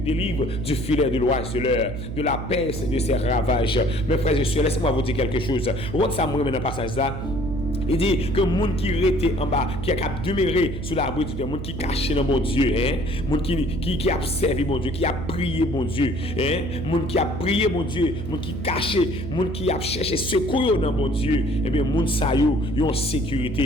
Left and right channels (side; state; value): right; noise; hum, 7 dB below the sound